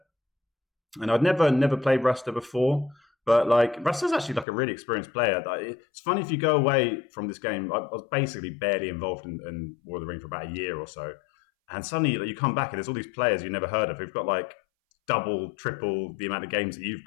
and I'd never played Rasta before. But like Rasta's actually like a really experienced player. It's funny if you go away from this game. I was basically barely involved in War of the Ring for about a year or so, and suddenly like, you come back and there's all these players you never heard of who've got like double, triple the amount of games that you've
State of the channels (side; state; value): right; drops out; at 4.5 s